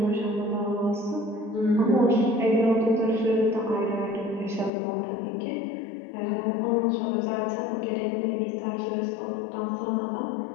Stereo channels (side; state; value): right; drops out; at 4.7 s